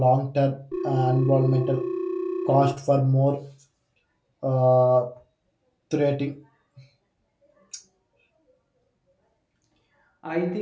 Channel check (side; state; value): both; identical; correlation 1.00